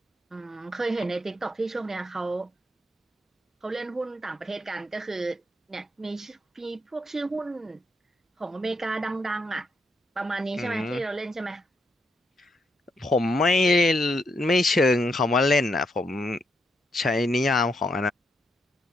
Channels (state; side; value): normal; both; correlation 0.79